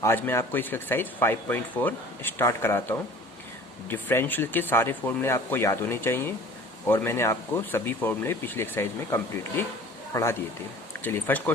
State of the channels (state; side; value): normal; both; correlation 0.45